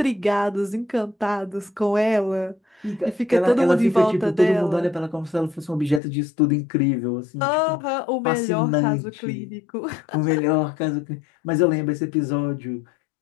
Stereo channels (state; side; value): drops out; right; at 6.0 s